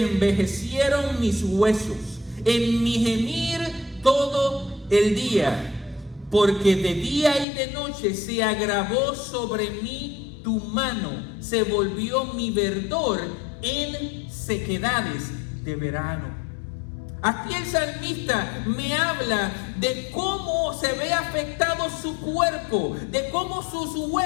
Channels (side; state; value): right; drops out; at 7.5 s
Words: envejecieron mis huesos en mi gemir todo el día, porque de día y de noche se agravó sobre mí tu mano, se volvió mi verdor en sequedades de verano. Aquí el salmista me habla de cómo se ve afectado su cuerpo, de cómo sus